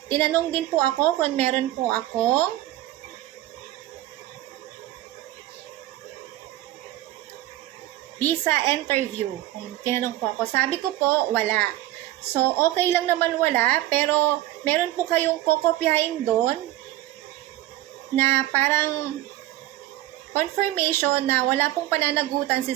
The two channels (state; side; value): quieter; left; 15.4 dB